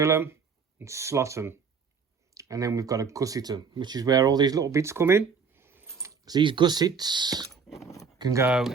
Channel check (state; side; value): quieter; left; 5.7 dB